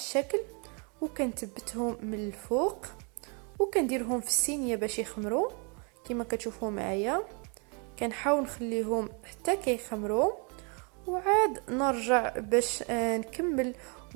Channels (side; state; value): left; quieter; 35.0 dB